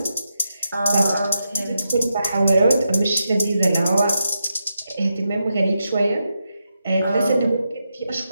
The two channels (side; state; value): both; inverted; correlation -0.86